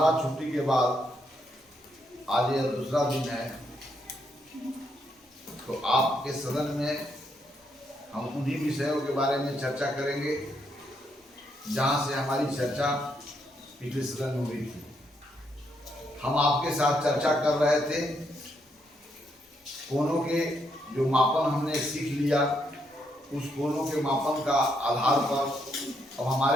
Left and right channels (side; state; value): both; normal; correlation 0.76